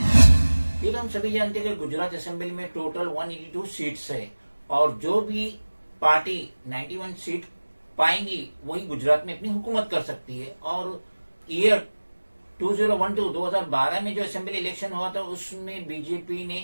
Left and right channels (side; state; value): both; inverted; correlation -1.00